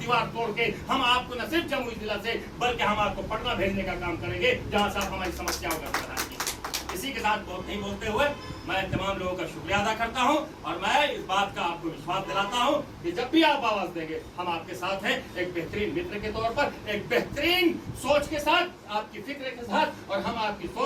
तोड़ के हम आपको न सिर्फ जमुई जिला से, बल्कि हम आपको पटना भेजने का काम करेंगे, जहां से आप हमारी समस्याओं का समाधान कीजिए। इसी के साथ बहुत नहीं बोलते हुए मैं तमाम लोगों का शुक्रिया अदा करता हूं, और मैं इस बात का आपको विश्वास दिलाता हूं कि जब भी आप आवाज देंगे हम आपके साथ हैं, एक बेहतरीन मित्र के तौर पर, एक बेहतरीन सोच के साथ, आपकी फिक्र के साथ, और हम आपकी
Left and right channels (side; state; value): both; identical; correlation 1.00